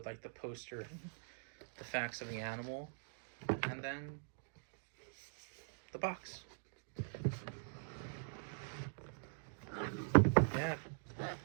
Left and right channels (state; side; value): silent; left; digital silence